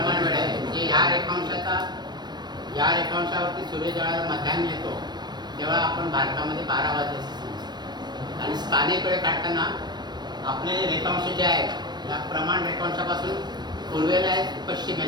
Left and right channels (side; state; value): left; late; 0.21 ms